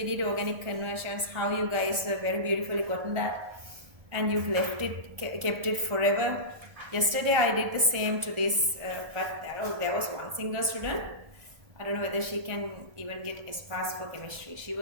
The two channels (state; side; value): late; left; 1.5 ms